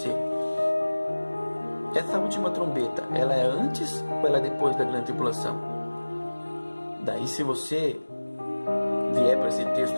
essa última trombeta, ela é antes ou ela é depois da grande tribulação? Daí, se você vier para esse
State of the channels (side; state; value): both; inverted; correlation -1.00